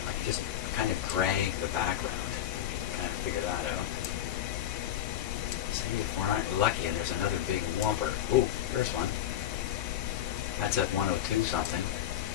I can just kind of drag the background. You can kind of figure that out. See if we aren't lucky and there's another big whomper. Oh, here's one. That's at 102 something.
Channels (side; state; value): right; quieter; 11.4 dB